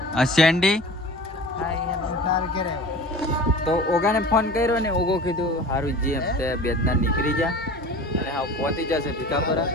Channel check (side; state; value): both; normal; correlation 0.39